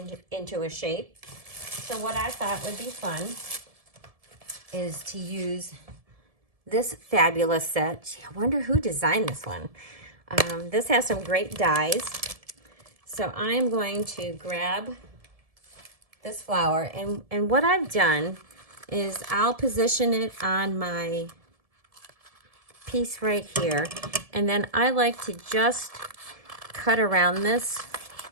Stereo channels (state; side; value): late; left; 1.7 ms